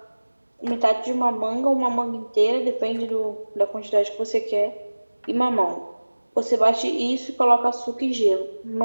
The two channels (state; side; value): inverted; both; correlation -1.00